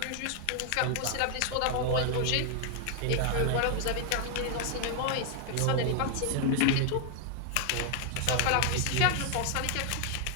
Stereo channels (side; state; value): both; different; correlation 0.00